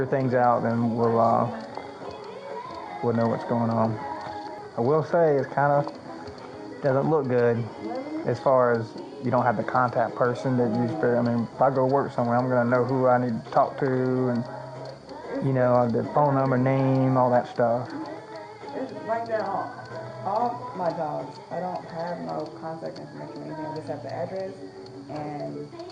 things out, then we'll know what's going on. I will say it kind of doesn't look good as far as you don't have the contact person that you spare. I mean, if I go work somewhere, I'm going to know who I need to talk to and, the phone number, name, all that stuff. It's like that on all my jobs. I don't have no contact information or anything. I just have the address, and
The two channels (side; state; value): both; identical; correlation 1.00